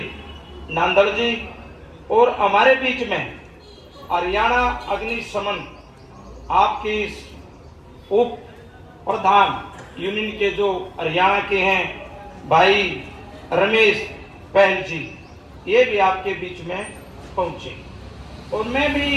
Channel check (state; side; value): identical; both; correlation 1.00